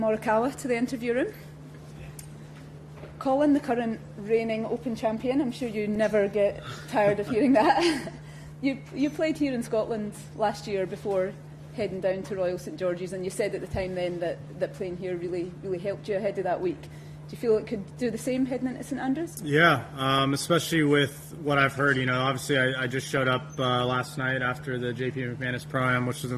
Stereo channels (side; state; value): both; identical; correlation 1.00